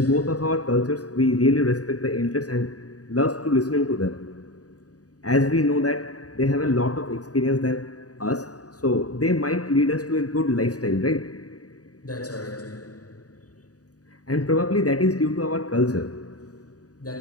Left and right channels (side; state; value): right; late; 0.67 ms